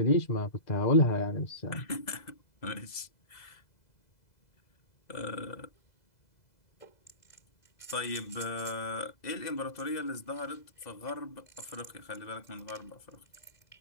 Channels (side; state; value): right; late; 2.0 ms